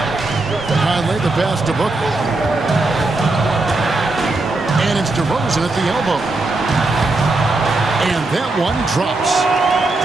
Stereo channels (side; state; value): left; quieter; 3.1 dB